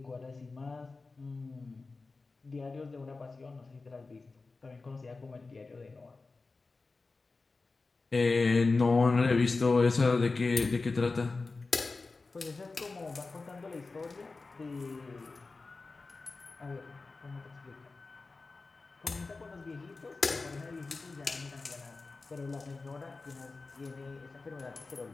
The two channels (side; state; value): right; quieter; 3.8 dB